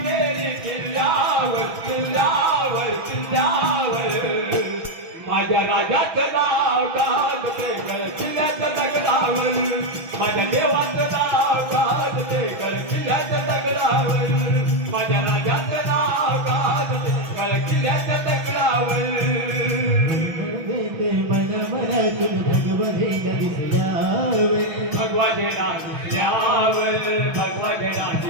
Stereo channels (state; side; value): late; left; 6.0 ms